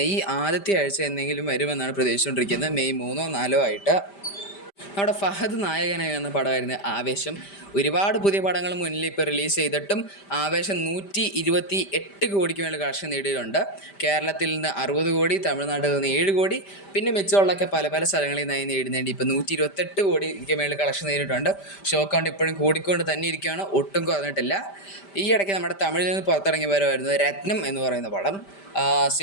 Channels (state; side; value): late; right; 5.1 ms